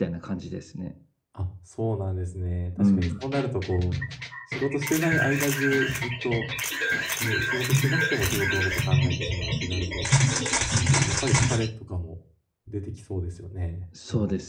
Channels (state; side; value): identical; both; correlation 1.00